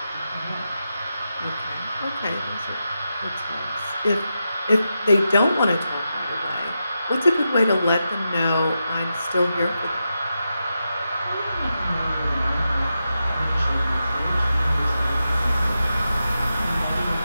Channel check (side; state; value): both; inverted; correlation -0.88